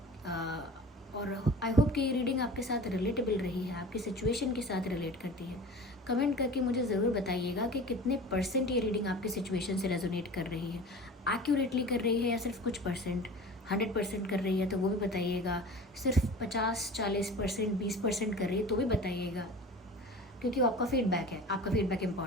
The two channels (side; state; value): both; normal; correlation 0.37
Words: और आई होप कि ये रीडिंग आपके साथ रिलेटेबल रही है, आपकी सिचुएशन के साथ रिलेट करती है। कमेंट करके मुझे ज़रूर बताइएगा कि कितने परसेंट ये रीडिंग आपकी सिचुएशन से रेजोनेट कर रही है, एक्यूरेटली कर रही है या सिर्फ कुछ परसेंट। 100% कर रही है तो वो भी बताइएगा, सिर्फ 50-40%, 20% कर रही है तो भी बताइएगा, क्योंकि वो आपका फीडबैक है, आपका फीडबैक